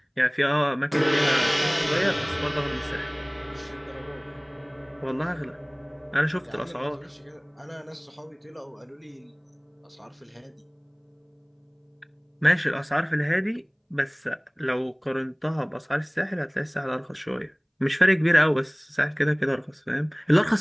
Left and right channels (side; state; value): both; identical; correlation 1.00